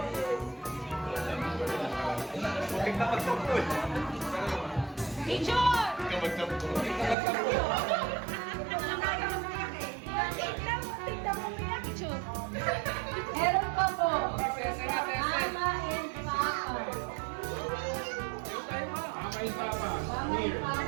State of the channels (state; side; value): drops out; left; at 7.2 s